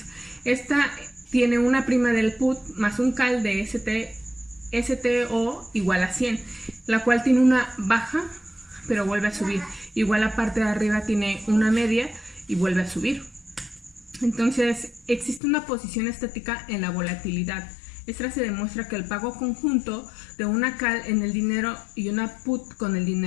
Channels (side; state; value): right; drops out; at 15.4 s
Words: Esta tiene una prima del put más un call de STO igual a 100, la cual tiene una baja pero vuelve a subir. Igual la parte de arriba tiene una media y vuelve a subir. Entonces existe una posición estática en la volatilidad. Esta se demuestra que el pago conjunto de una call en el dinero y una put con el